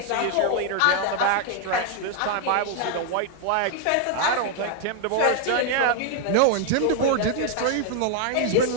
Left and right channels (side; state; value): both; different; correlation 0.00